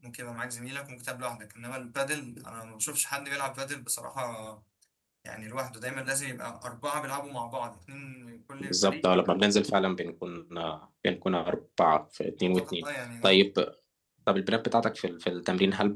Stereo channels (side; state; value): both; identical; correlation 1.00